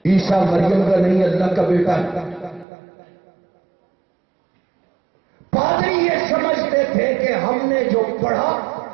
عیسیٰ مریم کا نہیں اللہ کا بیٹا ہے. پادری یہ سمجھتے تھے کہ ہم نے جو پڑھا،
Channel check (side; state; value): left; drops out; at 2.7 s